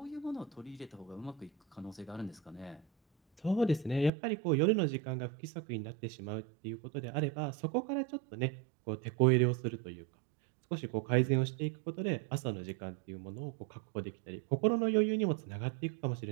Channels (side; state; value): left; drops out; at 4.1 s